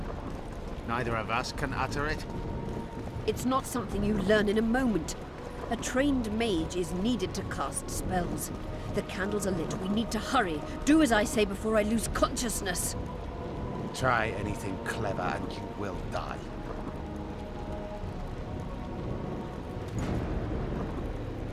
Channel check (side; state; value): both; identical; correlation 1.00